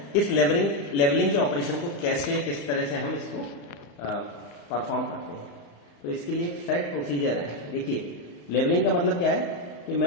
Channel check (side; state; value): right; late; 35 ms